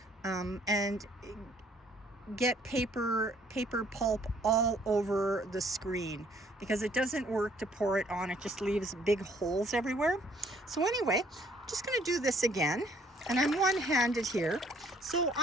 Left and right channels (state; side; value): normal; both; correlation 0.62